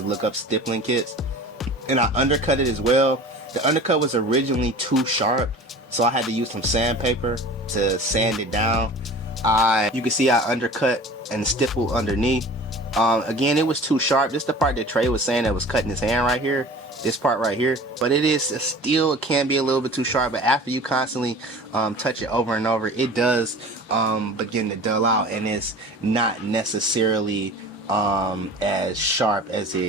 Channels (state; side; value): normal; both; correlation 0.41